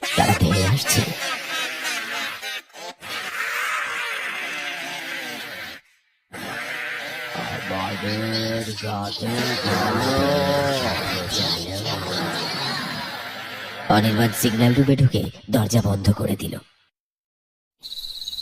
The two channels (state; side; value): identical; both; correlation 1.00